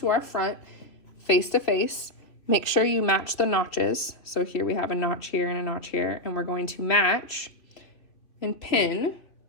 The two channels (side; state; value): right; late; 3.0 ms